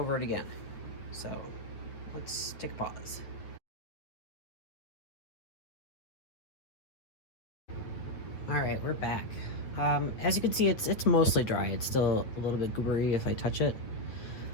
it again. So let's take a pause. All right, we're back. As you can see, it's mostly dry. It's still a little bit goobery if I touch it.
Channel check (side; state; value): right; late; 9.0 ms